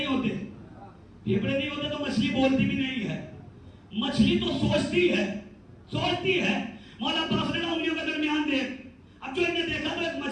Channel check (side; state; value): both; identical; correlation 1.00